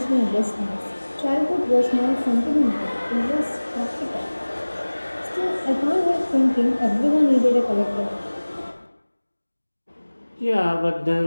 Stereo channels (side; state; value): both; inverted; correlation -1.00